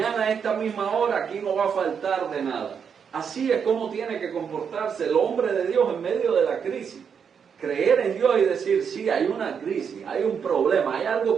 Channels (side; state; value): left; quieter; 6.9 dB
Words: a esta misma hora aquí no va a faltar de nada. Así es como tiene que comportarse el hombre de Dios en medio de la crisis. Creer en Dios y decir, sí, hay una crisis, hay un problema, hay algo